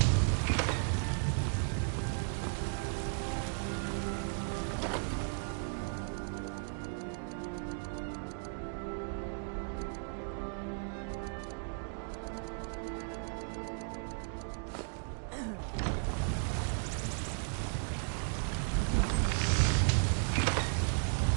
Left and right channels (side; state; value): left; silent; 54 dB below the other